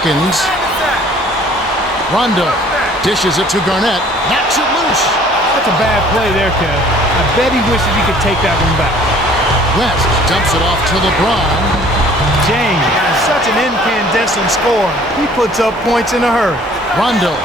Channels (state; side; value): normal; both; correlation 0.54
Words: Rondo dishes it to Garnett, knocks it loose. That's a bad play there, Kev. I bet he wishes he could take that one back. West dumps it off to LeBron. James, such an incandescent scorer. He puts up points in a hurry. Rondo